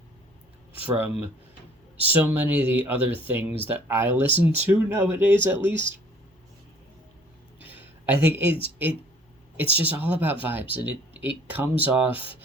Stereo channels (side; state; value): both; normal; correlation 0.55